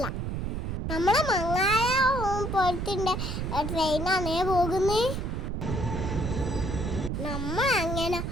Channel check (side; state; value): right; noise; rumble, 3 dB below the sound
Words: നമ്മളെ മങ്ങാല പോലത്തെ ട്രെയിനാണേ പോകുന്നേ. നമ്മൾ അങ്ങനെ